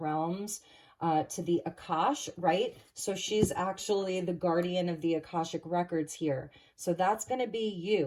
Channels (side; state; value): both; identical; correlation 1.00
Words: to the Akash, right? So she's actually the guardian of the Akashic records here. So that's going to be